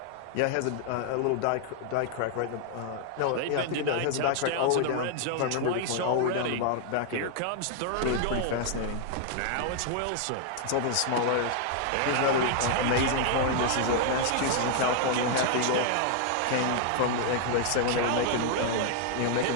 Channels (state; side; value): different; both; correlation 0.00